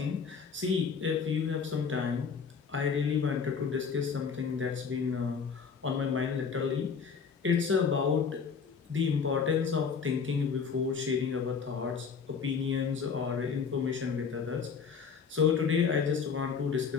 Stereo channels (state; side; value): quieter; right; 6.0 dB